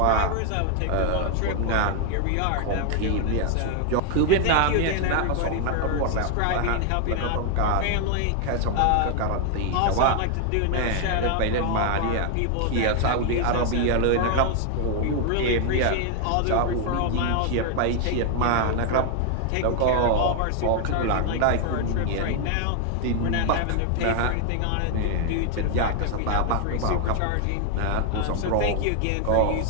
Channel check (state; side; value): different; both; correlation 0.00